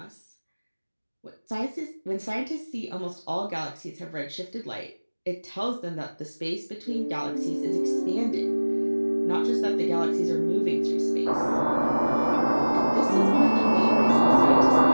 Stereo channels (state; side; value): inverted; both; correlation -1.00